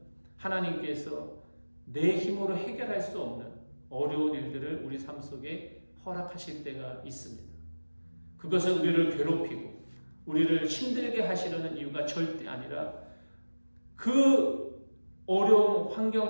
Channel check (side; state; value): both; inverted; correlation -1.00